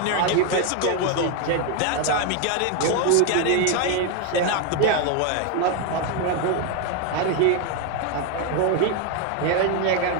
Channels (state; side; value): different; both; correlation 0.01